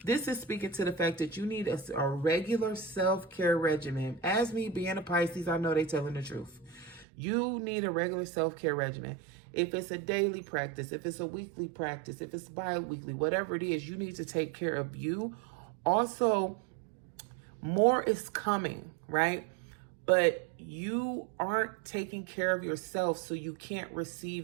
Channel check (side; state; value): left; drops out; at 7.1 s